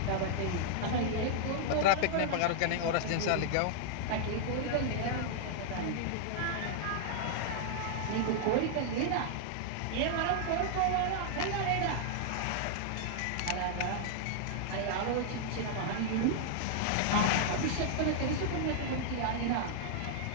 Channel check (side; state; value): both; different; correlation -0.01